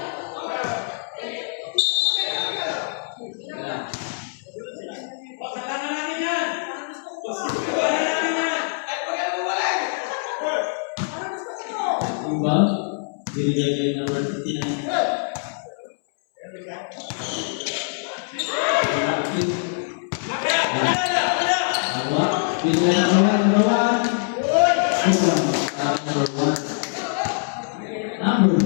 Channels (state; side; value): silent; right; 63 dB below the other